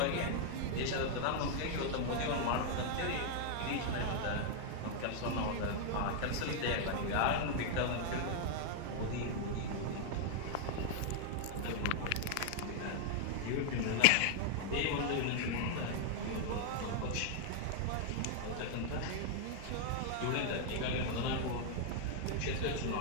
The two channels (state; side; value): different; both; correlation -0.01